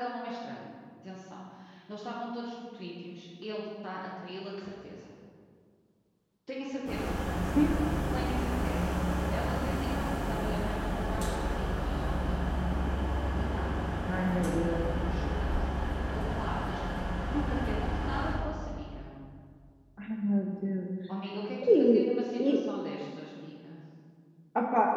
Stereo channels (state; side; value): identical; both; correlation 1.00